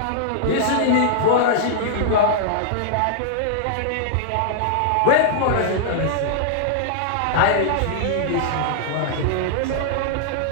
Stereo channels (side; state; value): both; different; correlation -0.01